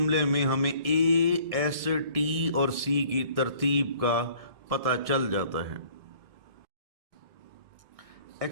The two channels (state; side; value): late; left; 1.6 ms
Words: में हमें ए, एस, टी और सी की तरतीब का पता चल जाता है।